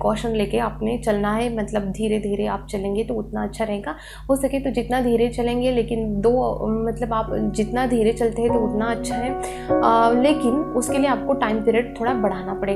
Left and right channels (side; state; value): both; identical; correlation 1.00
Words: लेके आपने चलना है, मतलब धीरे धीरे आप चलेंगे तो उतना अच्छा रहेगा। हो सके तो जितना धीरे चलेंगे, लेकिन मतलब आप जितना धीरे चलते हैं तो उतना अच्छा है। लेकिन उसके लिए आपको टाइम पीरियड थोड़ा बढ़ाना